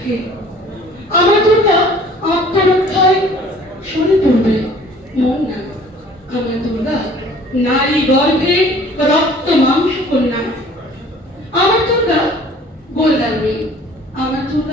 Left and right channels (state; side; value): normal; both; correlation 0.51